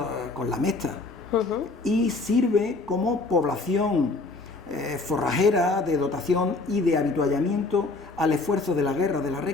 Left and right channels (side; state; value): right; quieter; 3.5 dB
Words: con la Mestra, y sirve como población forrajera de dotación y de habituallamiento al esfuerzo de la guerra, de la